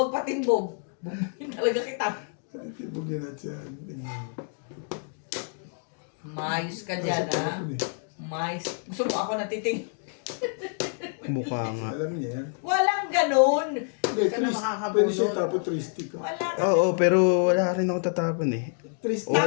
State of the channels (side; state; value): right; silent; 55 dB below the other